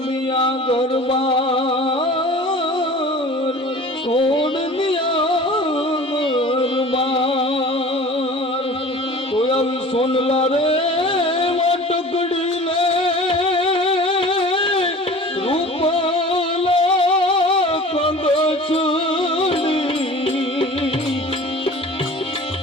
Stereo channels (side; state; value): both; normal; correlation 0.42